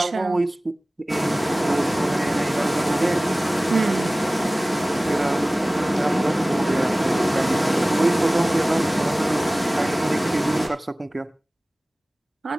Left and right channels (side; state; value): both; normal; correlation 0.98